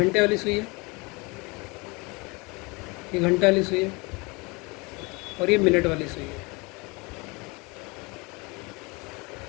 वाली सुई है, ये घंटा वाली सुई है, और ये मिनट वाली सुई है।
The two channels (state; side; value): quieter; right; 27.1 dB